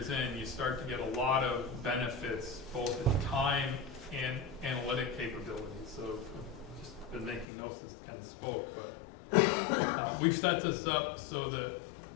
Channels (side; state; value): right; drops out; at 7.5 s